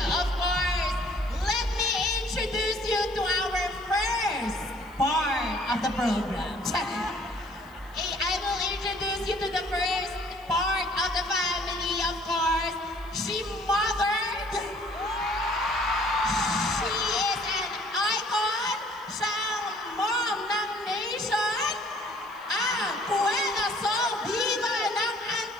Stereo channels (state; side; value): noise; left; hiss, 29 dB below the sound